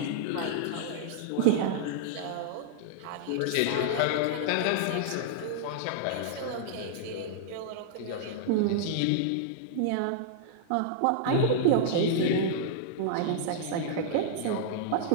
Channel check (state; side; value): different; both; correlation -0.01